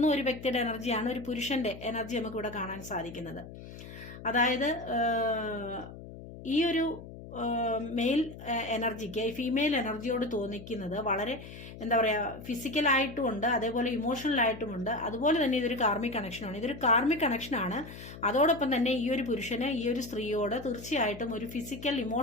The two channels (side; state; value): left; noise; hum, 14 dB below the sound